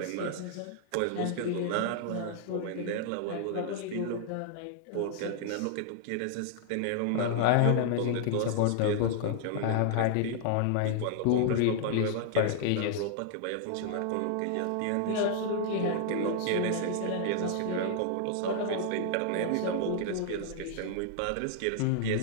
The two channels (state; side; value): different; both; correlation -0.01